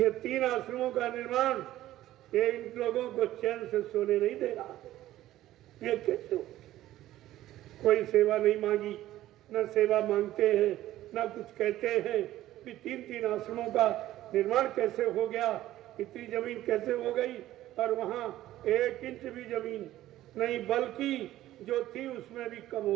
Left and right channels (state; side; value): quieter; left; 14.4 dB